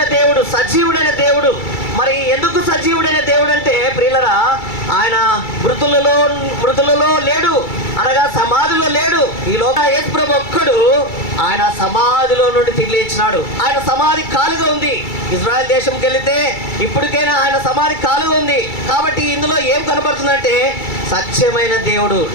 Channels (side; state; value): right; late; 2.3 ms